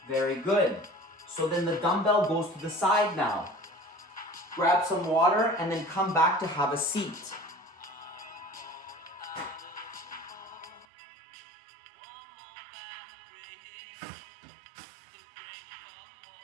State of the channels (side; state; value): left; drops out; at 10.9 s